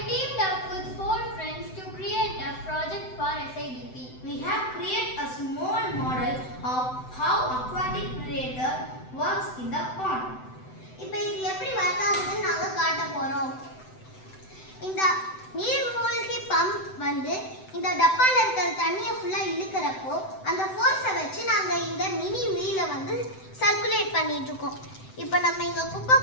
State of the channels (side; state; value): right; late; 7.9 ms